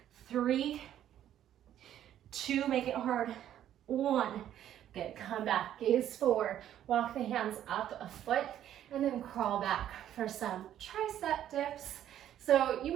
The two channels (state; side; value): quieter; left; 11.2 dB